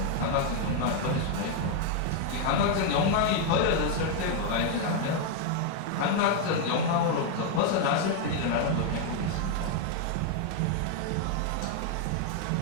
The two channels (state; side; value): different; both; correlation 0.00